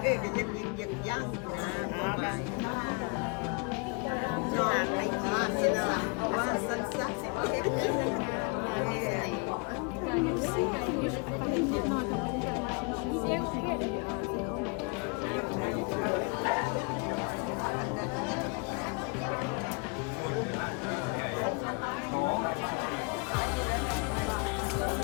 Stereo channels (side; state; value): right; quieter; 33.6 dB